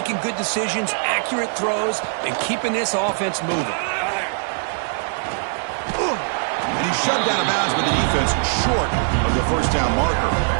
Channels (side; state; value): left; silent; digital silence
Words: good decisions, accurate throws, and keeping this offense moving. And he's shoved out of bounds with the defense short of the first down marker.